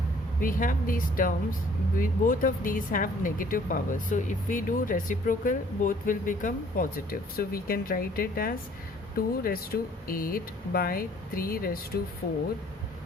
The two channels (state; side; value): normal; both; correlation 0.58